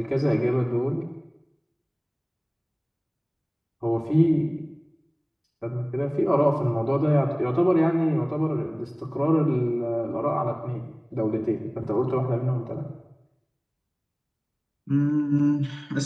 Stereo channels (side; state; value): both; identical; correlation 1.00